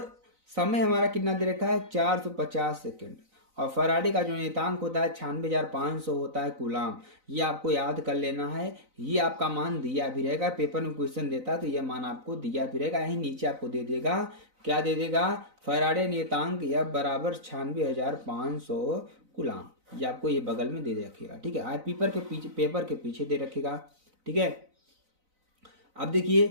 समय हमारा कितना दे रखा है? 450 सेकेंड। और फराडे का जो नियतांक होता है 96,500 होता है कूलाम। ये आपको याद कर लेना है। ये आपका मान दिया भी रहेगा, पेपर में क्वेश्चन देता है तो ये मान आपको दिया भी रहेगा। यही नीचे आपको दे देगा, क्या दे देगा, फराडे नियतांक F बराबर 96,500 कूलाम। ये आपको ये बगल में दे रखेगा, ठीक है। पेपर के पीछे दे रखेगा, ठीक है। अब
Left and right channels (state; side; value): late; left; 4.0 ms